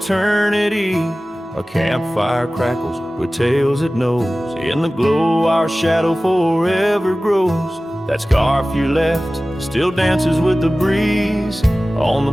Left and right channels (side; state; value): both; normal; correlation 0.97